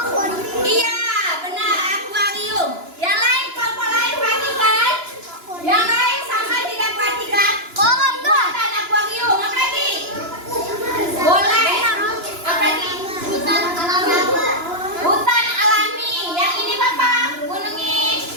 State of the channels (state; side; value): late; left; 2.9 ms